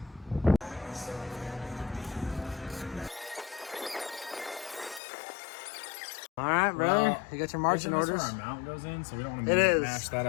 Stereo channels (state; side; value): drops out; right; at 5.0 s